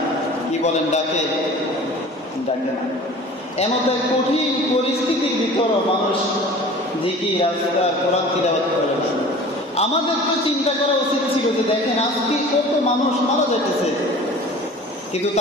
কি বলেন, ডাকে না। এমন তো কঠিন পরিস্থিতির ভিতরে মানুষ জিকির আজকার কোরআন তিলাওয়াত করে না। আমাদের তো চিন্তা করা উচিত ছিল যে দেখেন আজকে কত মানুষ মারা যাইতেছে, কিন্তু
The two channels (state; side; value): normal; both; correlation 0.43